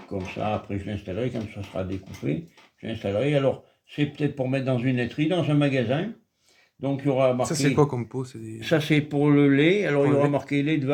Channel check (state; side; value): identical; both; correlation 1.00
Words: comme ça. Après, je l'installerai quand ça sera découpé. Je l'installerai. Alors, c'est peut-être pour mettre dans une laiterie, dans un magasin. Donc, il y aura marqué... Ça, c'est quoi comme pot? Ça, c'est pour le lait. Alors, pour il y aura lait. marqué lait de